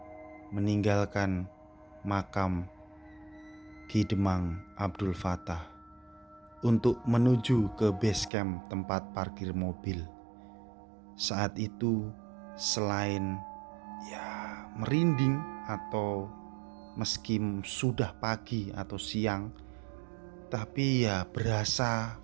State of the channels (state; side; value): drops out; left; at 8.3 s